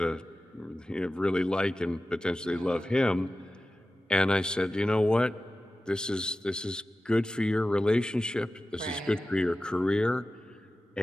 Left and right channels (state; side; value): normal; both; correlation 0.95